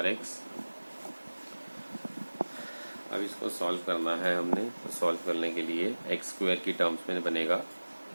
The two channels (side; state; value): both; inverted; correlation -1.00